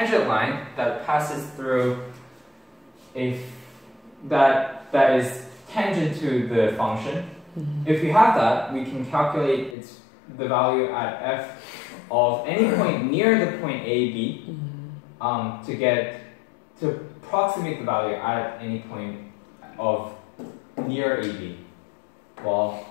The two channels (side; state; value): right; drops out; at 9.8 s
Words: line that passes through that is tangent to the function. If we have that, we can calculate the value at f of any point near the point A, B, to approximate the value at any point of near AB. Well,